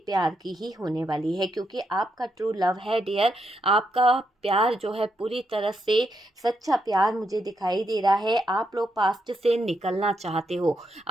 की ही होने वाली है, क्योंकि आपका ट्रू लव है डियर, आपका प्यार जो है पूरी तरह से सच्चा प्यार मुझे दिखाई दे रहा है। आप लोग पास्ट से निकलना चाहते हो,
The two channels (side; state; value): both; normal; correlation 0.80